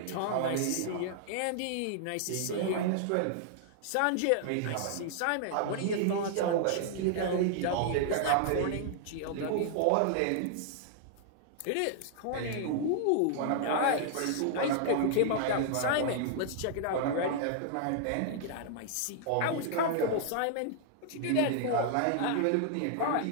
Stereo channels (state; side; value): different; both; correlation -0.01